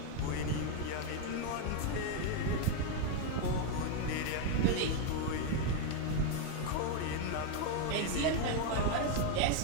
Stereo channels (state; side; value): different; both; correlation 0.01